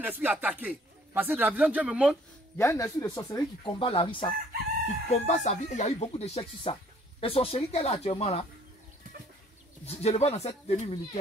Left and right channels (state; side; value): normal; both; correlation 0.60